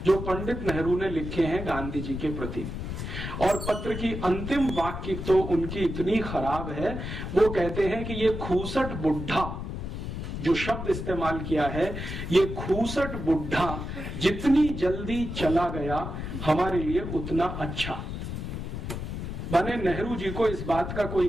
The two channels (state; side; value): noise; left; rumble, 6 dB below the sound